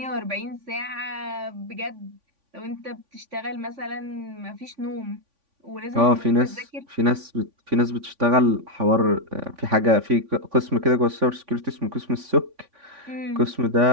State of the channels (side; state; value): left; late; 3.5 ms